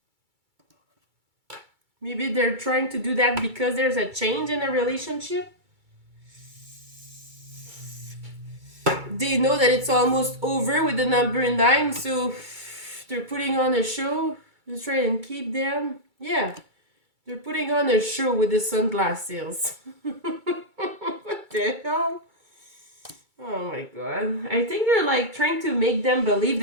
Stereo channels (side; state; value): left; late; 2.3 ms